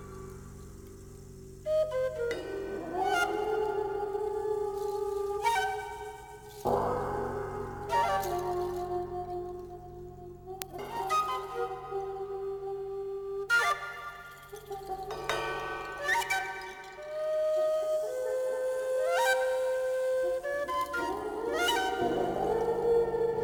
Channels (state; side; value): identical; both; correlation 1.00